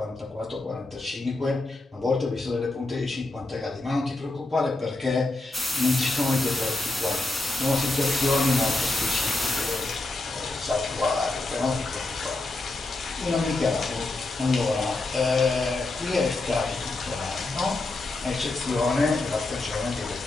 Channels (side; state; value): right; quieter; 3.0 dB